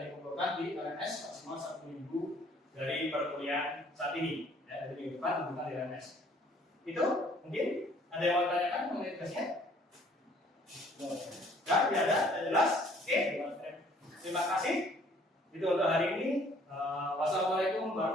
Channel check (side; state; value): both; normal; correlation 0.59